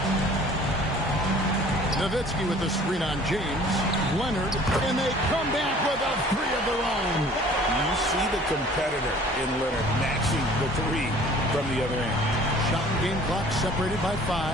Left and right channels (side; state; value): both; normal; correlation 0.50